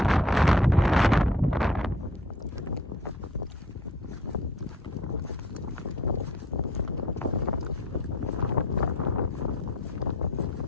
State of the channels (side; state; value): both; normal; correlation 0.51